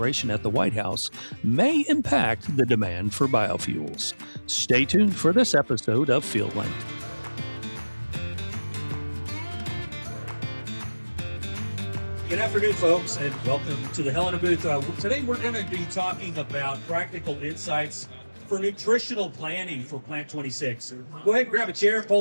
at the White House may impact the demand for biofuels. Stay tuned for this episode of FieldLink. Good afternoon, folks, and welcome to the Helena booth. Today we're going to be talking about practical insights for nutritional planning for Plant 26. Go ahead and grab a chair,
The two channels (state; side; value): inverted; both; correlation -1.00